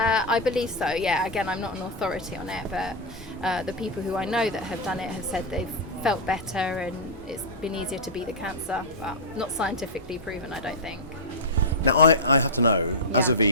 believe so, yeah. Again, I'm not an authority on it, but the people who I know that have done it have said they've felt better and it's been easier to beat the cancer, but not scientifically proven, I don't think. Now, I have to know, as Yeah. a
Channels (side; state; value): both; normal; correlation -0.06